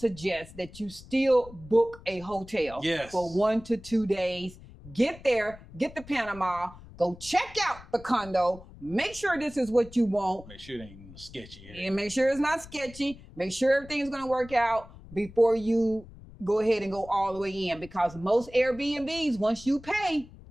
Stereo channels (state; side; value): noise; left; rumble, 19 dB below the sound